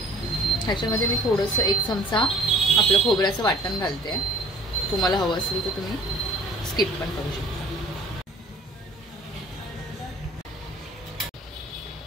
ह्याच्यामध्ये मी थोडंसं 1 चमचा आपलं खोबऱ्याचं वाटण घालते. तुम्हाला हवं असेल तर तुम्ही स्किप पण करू शकता.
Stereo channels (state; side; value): normal; both; correlation 0.52